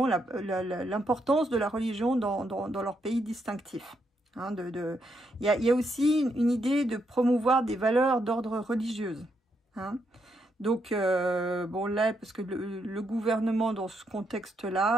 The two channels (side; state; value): both; normal; correlation 0.79